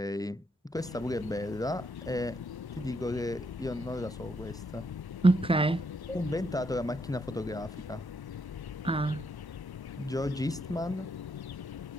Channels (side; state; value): both; normal; correlation 0.76